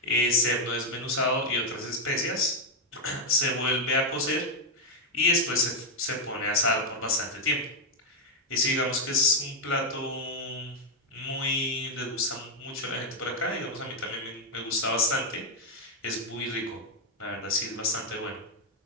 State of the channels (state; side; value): normal; both; correlation 0.01